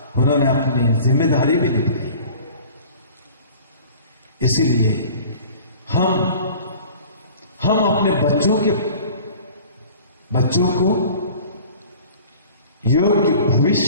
उन्होंने अपनी जिम्मेदारी भी निभाई। इसीलिए हम अपने बच्चों को योग्य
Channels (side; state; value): both; inverted; correlation -0.45